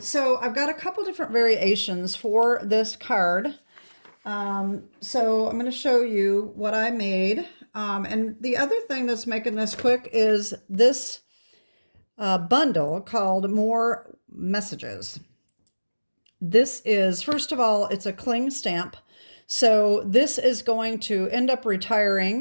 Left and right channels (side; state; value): both; inverted; correlation -1.00